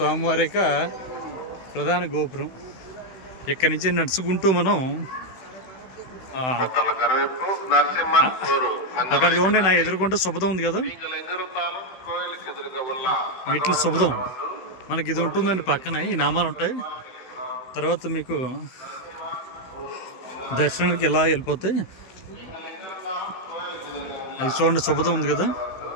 యొక్క ప్రధాన గోపురం. ఇక్కడి నుంచి నడుచుకుంటూ మనం అక్కడ చూడండి, నా ఎదుర్కొంటూ శుభదం ఉంది కదా, మెట్లు శుభదం. మనకి ఇది ఉంటుందండి పక్కన, ఈ నామాలు ఉంటాయి. తర్వాత మీకు దర్శనానికి ఎలా వెళ్ళిపోతాయి. అది చూడండి, శుభదం ఉంది కదా.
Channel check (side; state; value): right; late; 16 ms